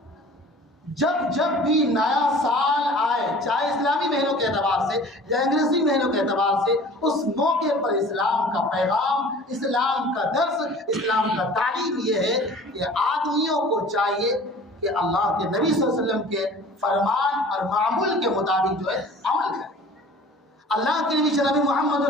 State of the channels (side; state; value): both; normal; correlation 0.45